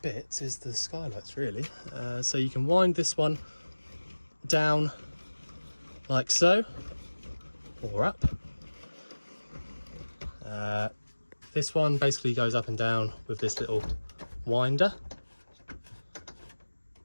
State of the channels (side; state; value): both; inverted; correlation -1.00